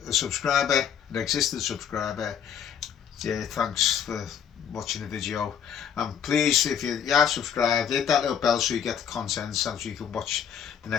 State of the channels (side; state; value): right; quieter; 8.4 dB